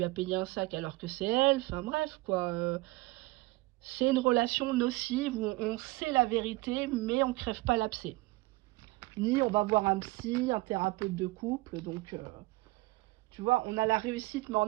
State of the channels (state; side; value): quieter; left; 21.7 dB